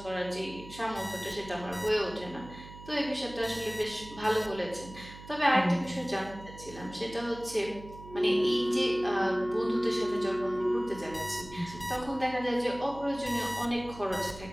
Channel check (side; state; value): right; noise; hum, 16 dB below the sound